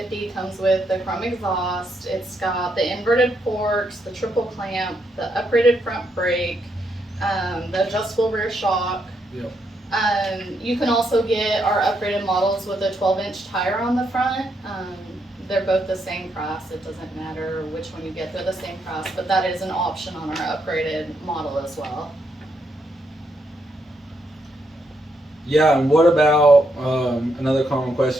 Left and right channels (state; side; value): normal; both; correlation 0.78